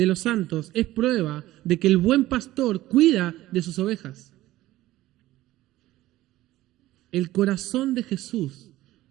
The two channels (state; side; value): quieter; left; 16.0 dB